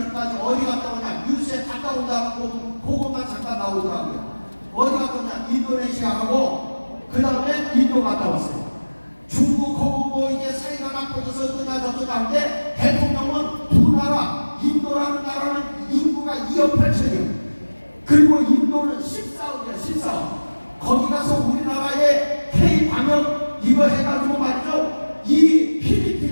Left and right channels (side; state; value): both; inverted; correlation -1.00